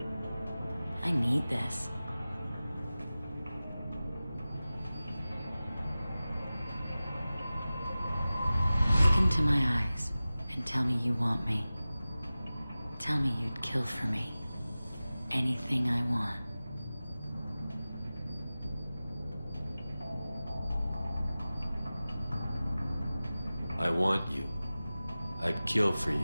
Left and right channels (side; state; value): both; inverted; correlation -0.97